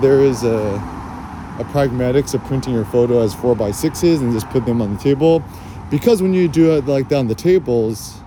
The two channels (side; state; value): both; identical; correlation 1.00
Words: there is a pragmatics of printing your photo as 4x6s and just put them on the table. Because when you do it like that on the tables,